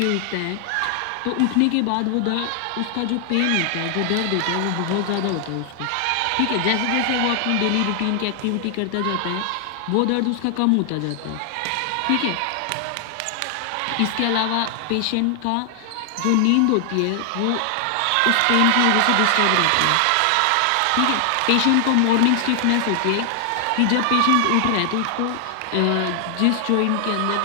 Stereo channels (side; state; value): both; different; correlation 0.00